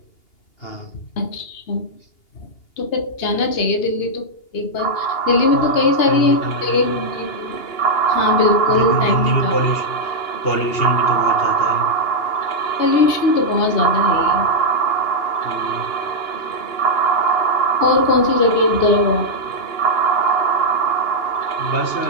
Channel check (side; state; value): right; late; 2.8 ms